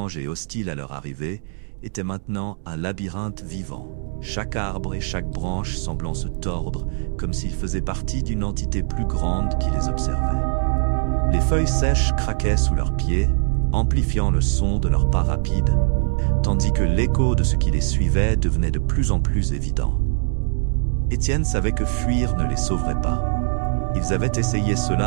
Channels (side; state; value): left; silent; 64 dB below the other